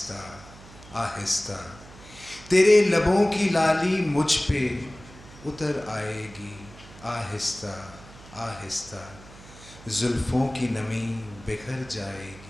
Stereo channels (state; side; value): noise; right; hum, 19 dB below the sound